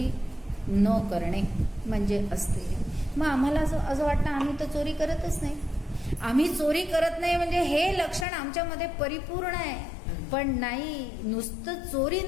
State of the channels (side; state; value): right; drops out; at 8.2 s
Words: न करणे म्हणजे अस्तेय. मग आम्हाला असं वाटतं आम्ही तर चोरी करतच नाही. आम्ही चोरी करत नाही म्हणजे हे लक्षण आमच्यामध्ये परिपूर्ण आहे, पण नाही, नुसतं चोरी